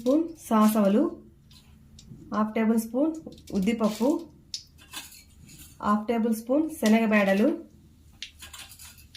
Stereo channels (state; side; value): identical; both; correlation 1.00